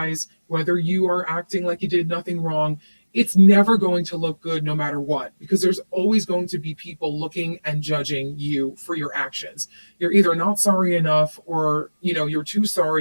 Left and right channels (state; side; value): inverted; both; correlation -1.00